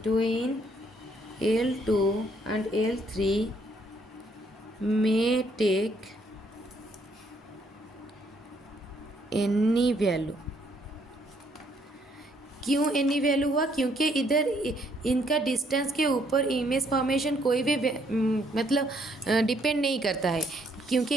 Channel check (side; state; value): both; normal; correlation 0.69